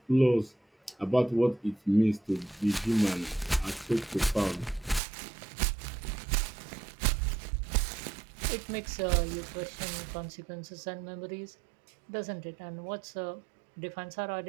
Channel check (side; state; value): left; drops out; at 5.0 s